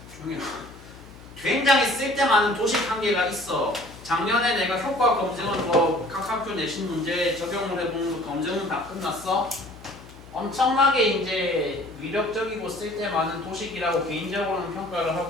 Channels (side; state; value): left; noise; hum, 19 dB below the sound